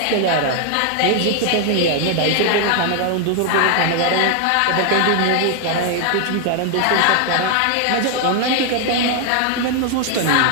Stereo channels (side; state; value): both; different; correlation 0.00